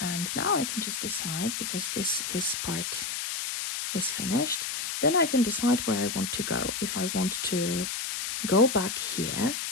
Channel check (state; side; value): noise; left; hiss, 3 dB below the sound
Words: now I can just decide, because this part is finished, then I can decide where I want to go. If I want to go back here,